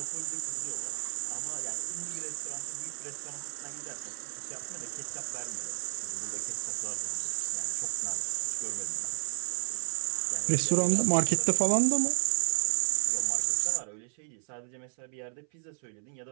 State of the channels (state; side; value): silent; left; 57 dB below the other